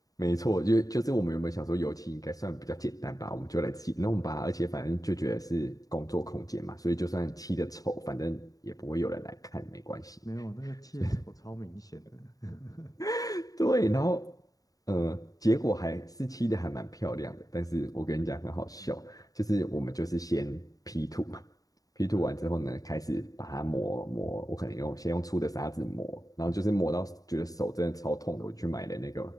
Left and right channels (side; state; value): right; late; 0.18 ms